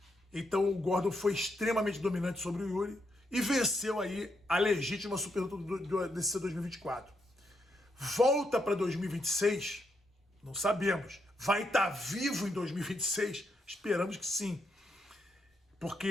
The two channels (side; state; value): both; normal; correlation 0.80